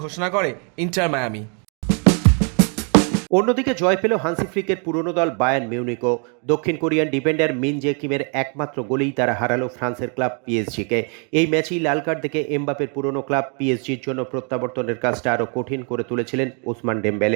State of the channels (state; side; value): quieter; left; 38.1 dB